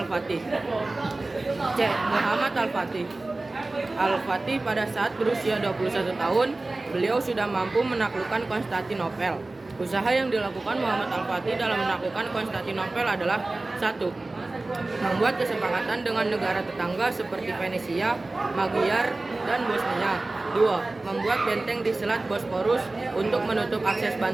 C. Muhammad Al-Fatih. Al-Fatih pada saat berusia 21 tahun, beliau sudah mampu menaklukkan Konstantinopel. Usaha yang dilakukan Muhammad Al-Fatih dalam menaklukkan Konstantinopel adalah 1. Membuat kesepakatan dengan negara tetangga seperti Venesia, Magyar, dan Bosnia. 2. Membuat benteng di Selat Bosporus untuk menutup akses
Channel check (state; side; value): quieter; left; 3.1 dB